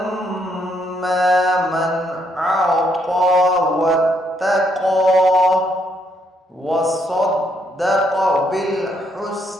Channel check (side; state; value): both; normal; correlation 0.73